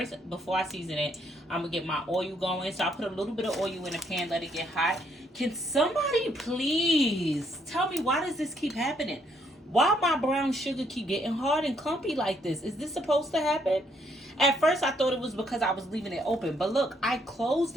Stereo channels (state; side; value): normal; both; correlation 0.71